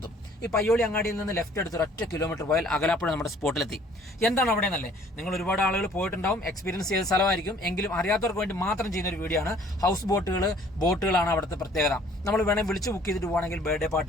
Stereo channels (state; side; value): normal; both; correlation 0.56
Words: ഈ പയ്യോളി അങ്ങാടിയിൽ നിന്ന് ലെഫ്റ്റ് എടുത്ത് ഒറ്റ കിലോമീറ്റർ പോയാൽ അകലാപ്പുഴ നമ്മുടെ സ്പോട്ടിലെത്തി. എന്താണ് അവിടെ എന്നല്ലേ, നിങ്ങൾ ഒരുപാട് ആളുകൾ പോയിട്ടുണ്ടാവും, എക്സ്പീരിയൻസ് ചെയ്ത സ്ഥലമായിരിക്കും. എങ്കിലും അറിയാത്തവർക്ക് വേണ്ടി മാത്രം ചെയ്യുന്ന ഒരു വീഡിയോ ആണ്. ഹൗസ് ബോട്ടുകളാണ് അവിടുത്തെ പ്രത്യേകത. നമ്മൾ വേണമെങ്കിൽ വിളിച്ച് ബുക്ക് ചെയ്തിട്ട് പോകണമെങ്കിൽ ബർത്ത്ഡേ